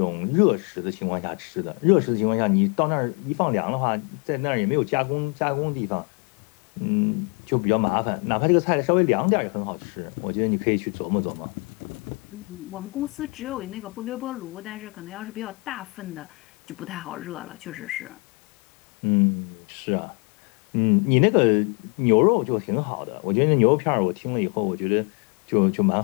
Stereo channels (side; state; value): right; quieter; 30.8 dB